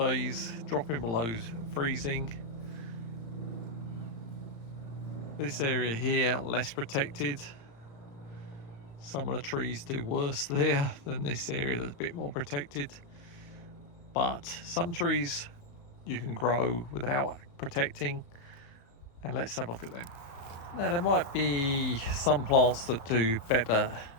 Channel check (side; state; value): right; late; 35 ms